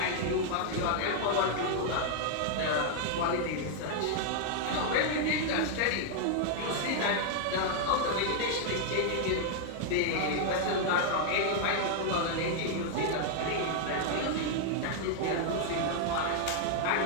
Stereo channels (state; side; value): different; both; correlation 0.00